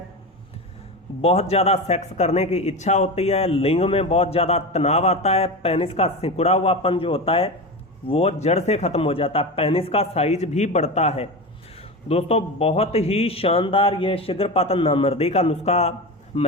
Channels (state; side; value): normal; both; correlation 0.23